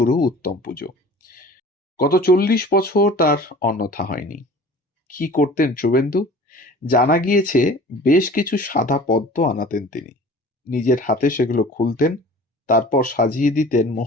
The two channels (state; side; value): normal; both; correlation 0.44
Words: উত্তম পুজো। গত 40 বছর তার অন্যথা হয়নি। কি করতেন শুভেন্দু? জানা গিয়েছে বেশ কিছু সাদা পদ্ম আনাতেন তিনি, নিজের হাতে সেগুলো খুলতেন, তারপর সাজিয়ে দিতেন